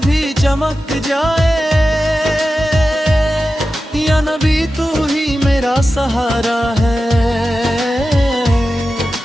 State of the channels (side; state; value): both; normal; correlation 0.93